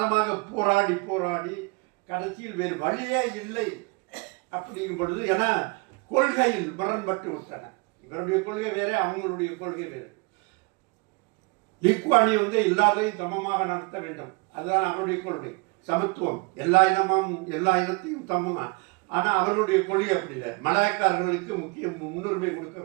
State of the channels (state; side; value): quieter; left; 28.7 dB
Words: போராடி கடைசியில் வேறு வழியே இல்லை அப்படிங்கும் பொழுது, ஏன்னா கொள்கையில் முரண்பட்டு விட்டன. இவருடைய கொள்கை வேற, அவங்களுடைய கொள்கை வேறு. லீ குவான் யூ எல்லாரையும் சமமாக நடத்த வேண்டும், அதுதான் அவருடைய கொள்கை. சமத்துவம், எல்லா இனத்தையும் சமமாக. ஆனால் அவர்களுடைய கொள்கை அப்படி இல்லை. மலாய்க்காரர்களுக்கு முன்னுரிமை கொடுக்க